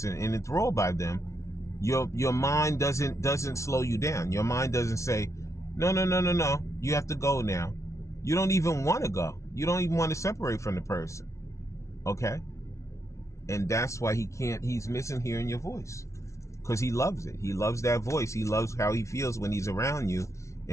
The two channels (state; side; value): late; right; 0.14 ms